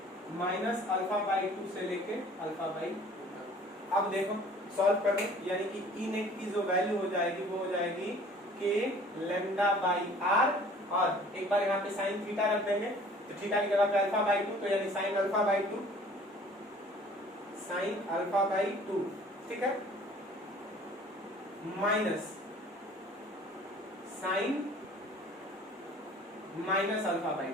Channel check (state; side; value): normal; both; correlation 0.51